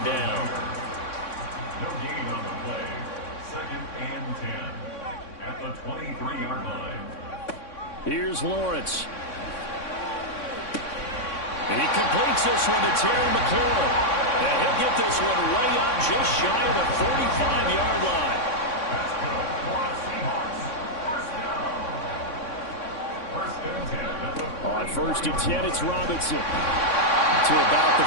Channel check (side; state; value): right; late; 3.6 ms